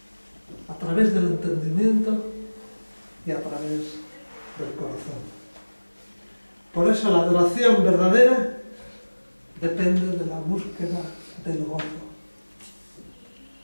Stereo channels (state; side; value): inverted; both; correlation -1.00